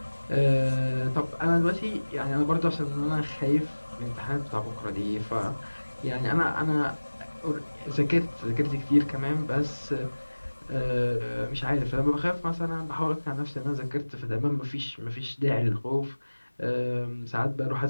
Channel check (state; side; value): inverted; both; correlation -1.00